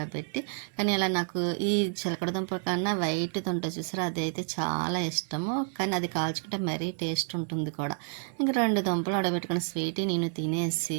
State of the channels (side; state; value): left; silent; 58 dB below the other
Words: కానీ ఇలా నాకు ఈ చిలకడ దుంప కన్నా వైట్ దుంట చూసారా, అదైతే చాలా ఇష్టము. కానీ అది కాల్చుకుంటే మరీ టేస్ట్ ఉంటుంది కూడా. ఇంక 2 దుంపలు ఆడబెట్టుకుని స్వీటీ నేను తినేసి,